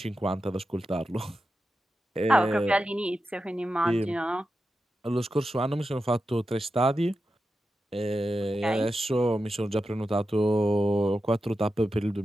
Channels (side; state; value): both; normal; correlation 0.90